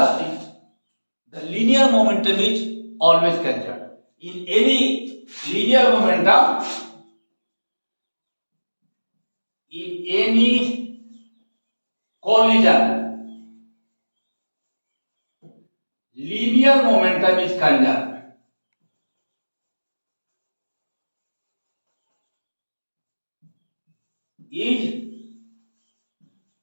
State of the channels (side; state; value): both; inverted; correlation -1.00